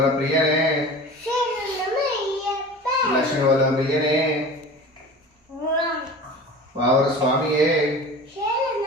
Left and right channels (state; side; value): normal; both; correlation 0.37